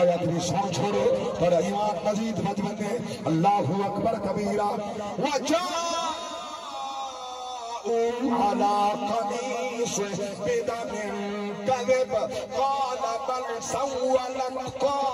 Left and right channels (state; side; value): identical; both; correlation 1.00